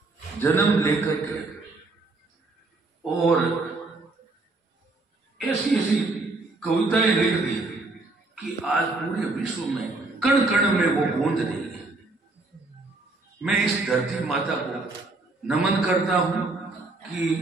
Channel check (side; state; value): left; quieter; 3.3 dB